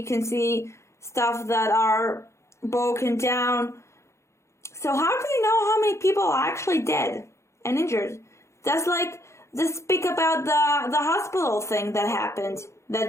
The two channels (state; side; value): late; right; 0.14 ms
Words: can see stuff that are broken down. So how do you know how many people are actually dead and injured? That's like, just speak about the hospital thing that happened,